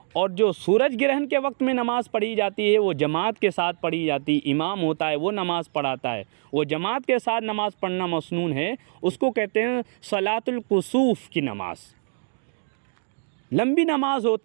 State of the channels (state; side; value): silent; left; digital silence